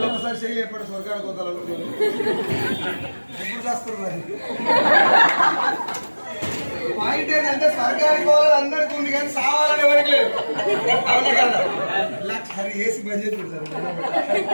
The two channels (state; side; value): inverted; both; correlation -1.00